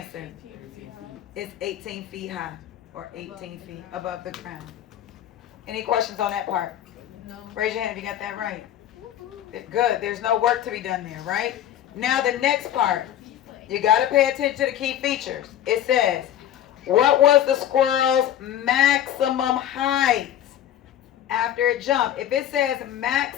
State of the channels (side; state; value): right; quieter; 11.1 dB